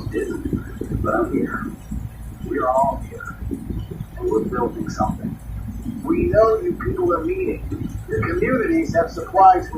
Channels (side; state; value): both; identical; correlation 1.00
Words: didn't. But I'm here. We're all here. And we're building something. We know you people are meeting. Your communities have supplies